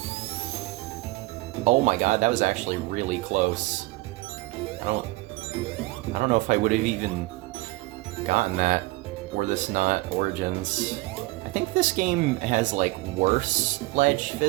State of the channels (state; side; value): quieter; left; 21.1 dB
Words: Oh my god, that was actually really close. I don't know if I would have even gotten that were this not Origins. I think this game has, like, worse ledge